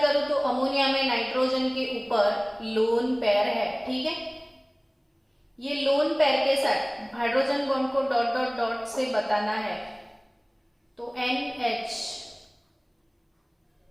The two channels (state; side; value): identical; both; correlation 1.00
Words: करूं तो अमोनिया में नाइट्रोजन के ऊपर लोन पेयर है, ठीक है। ये लोन पेयर के साथ hydrogen bond co dot dot dot से बताना है, तो NH